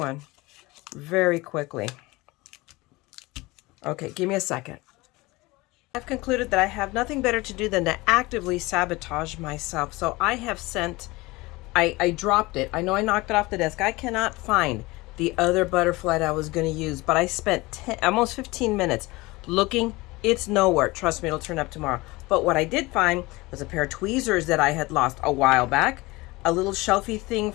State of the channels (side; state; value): right; quieter; 22.0 dB